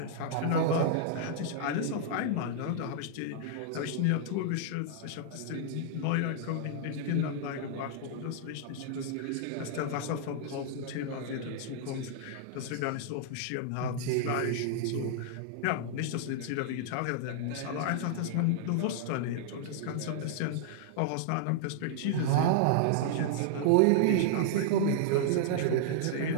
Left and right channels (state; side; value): different; both; correlation -0.01